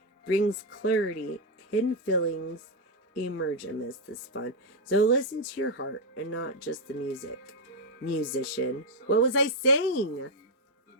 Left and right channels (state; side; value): normal; both; correlation 0.01